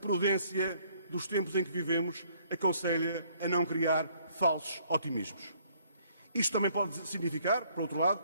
dos tempos em que vivemos aconselha a não criar falsos otimismos. Isto também pode significar, por outro lado,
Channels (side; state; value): both; inverted; correlation -0.64